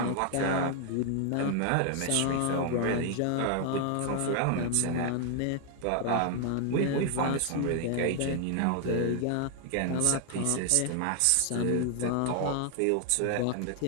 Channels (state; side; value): different; both; correlation 0.00